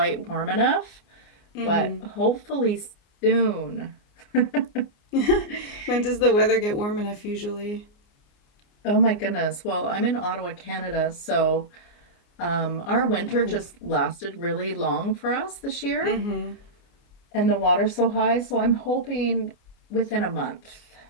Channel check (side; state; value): right; late; 29 ms